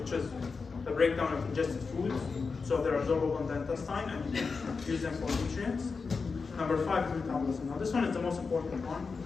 which is the breakdown of ingested foods. So they're absorbable in the intestine and you can use them for nutrients. Number 5 is metabolism. Now this one is the most important one.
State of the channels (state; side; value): quieter; right; 4.8 dB